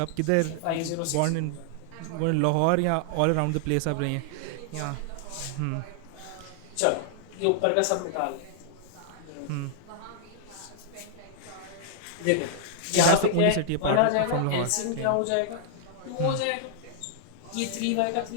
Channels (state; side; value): different; both; correlation -0.01